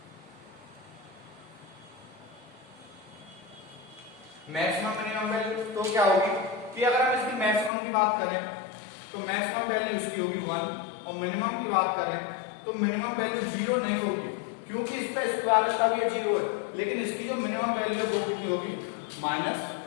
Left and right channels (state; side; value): drops out; right; at 7.7 s